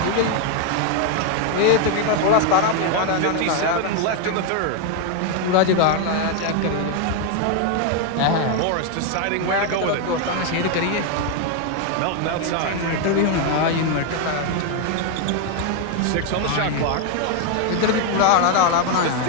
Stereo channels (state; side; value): different; both; correlation 0.01